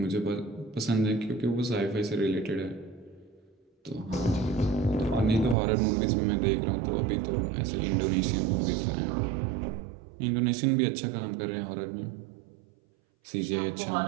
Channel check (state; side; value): drops out; left; at 5.6 s